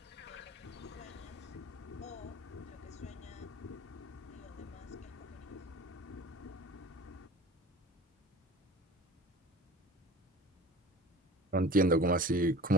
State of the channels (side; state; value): both; normal; correlation 0.40